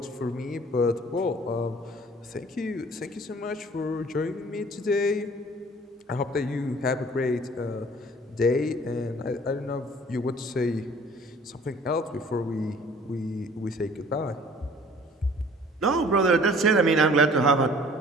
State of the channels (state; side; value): normal; both; correlation 0.51